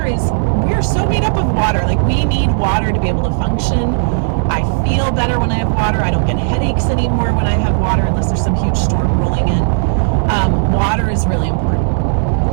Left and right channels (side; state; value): left; silent; digital silence